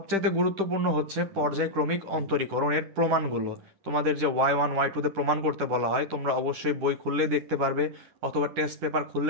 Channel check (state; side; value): late; left; 10 ms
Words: গুরুত্বপূর্ণ হচ্ছে পর্যায়ক্রমিক অন্তরীকরণের প্রমাণগুলো। তোমাদের যে Y1 Y2 প্রমাণ করতে বলা হয় তোমরা অবশ্যই বই খুললেই দেখতে পারবে অথবা টেস্ট পেপার